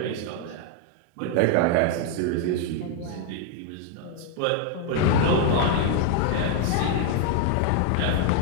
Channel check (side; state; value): both; different; correlation 0.00